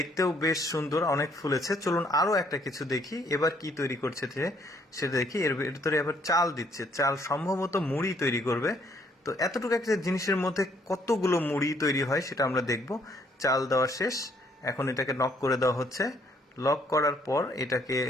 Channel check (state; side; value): normal; both; correlation 0.66